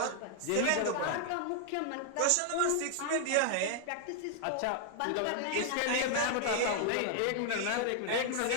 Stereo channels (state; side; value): different; both; correlation 0.00